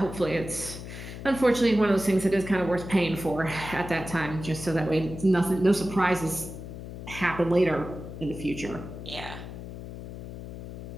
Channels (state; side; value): noise; left; hum, 10 dB below the sound